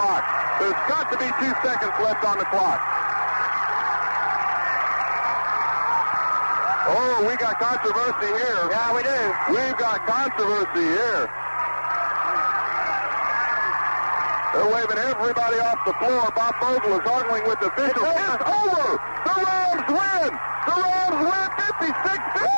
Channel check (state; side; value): inverted; both; correlation -1.00